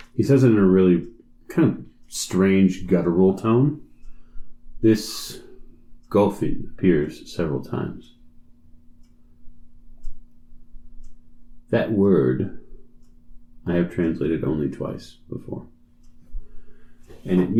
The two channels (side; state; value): both; identical; correlation 1.00